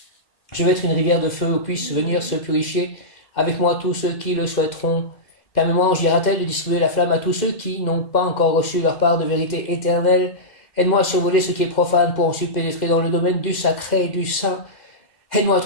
Je veux être une rivière de feu où puissent venir se purifier avec moi tous ceux qui le souhaiteront. Permets-moi, ange Hieratel, de distribuer la flamme à tous ceux qui n'ont pas encore reçu leur part de vérité éternelle. Aide-moi à survoler ce qui est profane pour ensuite pénétrer dans le domaine du sacré et du saint. Aide-moi à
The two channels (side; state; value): right; late; 2.1 ms